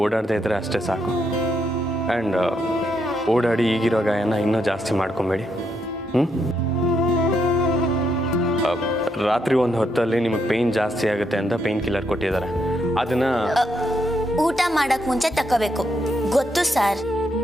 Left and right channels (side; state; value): both; normal; correlation 0.78